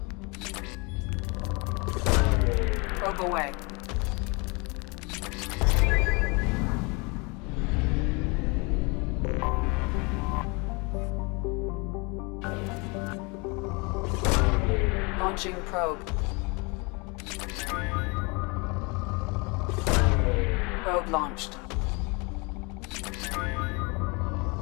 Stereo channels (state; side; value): quieter; right; 29.3 dB